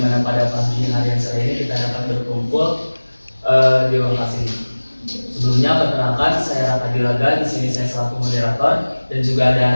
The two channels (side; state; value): both; inverted; correlation -1.00